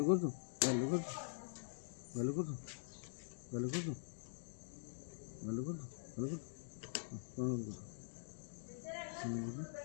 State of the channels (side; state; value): right; silent; digital silence